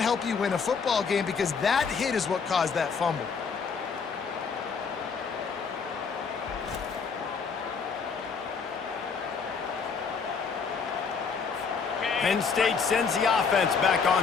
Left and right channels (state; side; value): quieter; right; 5.5 dB